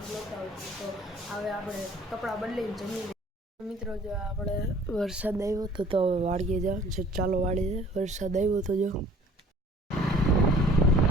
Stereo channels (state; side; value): normal; both; correlation 0.52